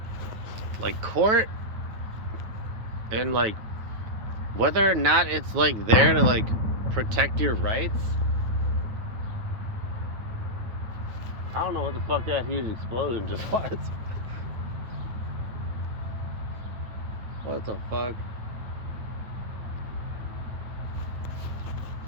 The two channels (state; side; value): late; left; 9.1 ms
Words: like court and like whether or not it's like there to like protect your rights. I don't know what the fuck that huge explosion just was. What the fuck?